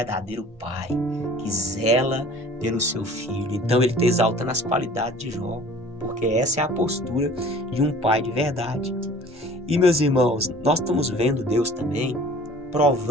pai que zela pelo seu filho. Então ele está exaltando as qualidades de Jó, porque essa é a postura de um pai de verdade. E, meus irmãos, nós estamos vendo Deus também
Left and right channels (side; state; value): both; normal; correlation 0.48